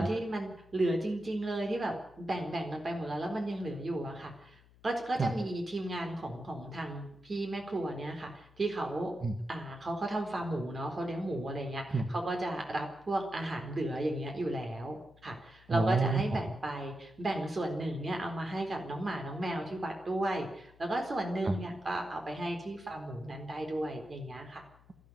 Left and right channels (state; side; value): noise; left; hum, 25 dB below the sound